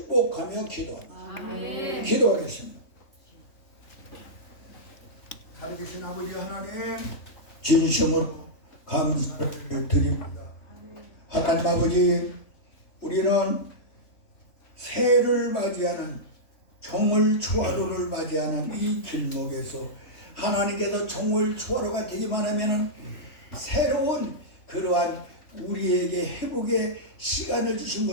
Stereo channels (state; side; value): late; right; 3.1 ms